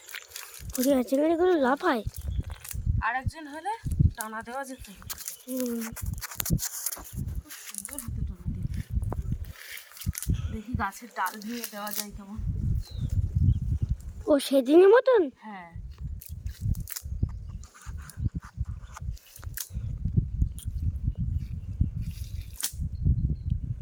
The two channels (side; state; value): both; identical; correlation 1.00